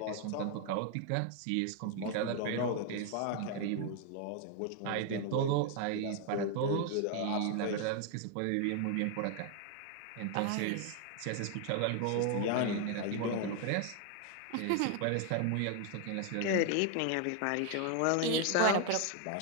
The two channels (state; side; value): different; both; correlation 0.00